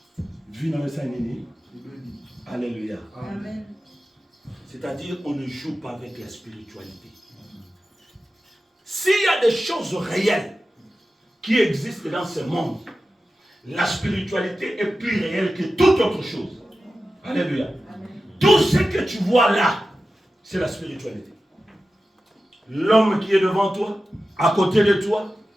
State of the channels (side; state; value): both; normal; correlation 0.93